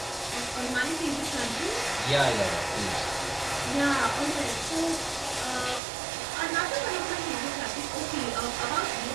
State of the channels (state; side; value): drops out; left; at 5.8 s